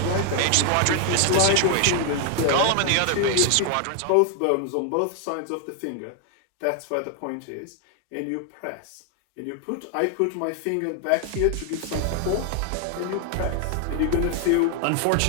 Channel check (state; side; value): different; both; correlation 0.00